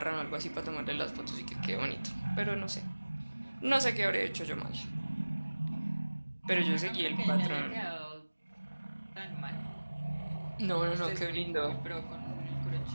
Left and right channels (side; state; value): both; inverted; correlation -1.00